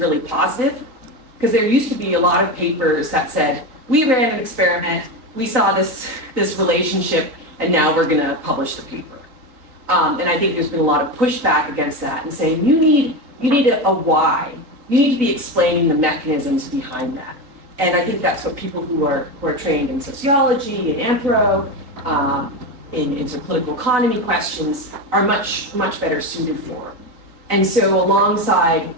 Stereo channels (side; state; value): left; late; 3.9 ms